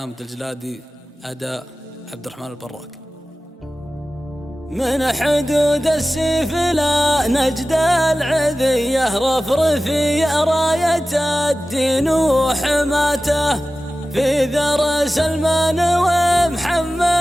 الجلادي، أداء عبد الرحمن البراك. من حدود السيف لا نجد العذية، رفرفي راية الدين وحماته، في ذر سلمان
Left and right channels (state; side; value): normal; both; correlation 0.96